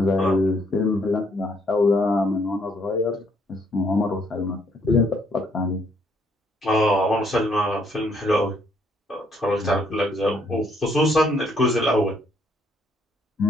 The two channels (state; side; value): normal; both; correlation 0.69